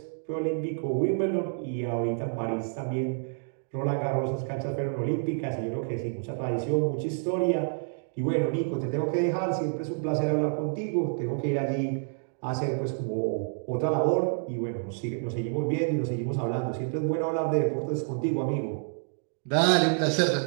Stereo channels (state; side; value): silent; left; digital silence